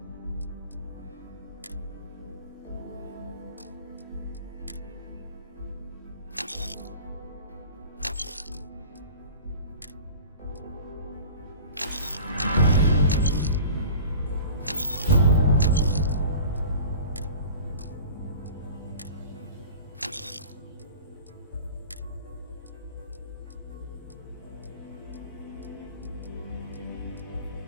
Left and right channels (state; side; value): inverted; both; correlation -0.40